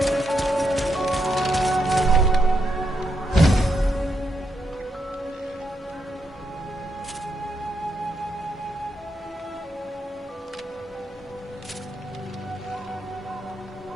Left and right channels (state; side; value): normal; both; correlation 0.80